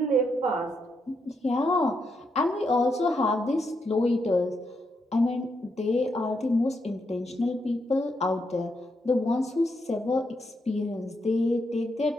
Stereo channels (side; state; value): both; normal; correlation 0.81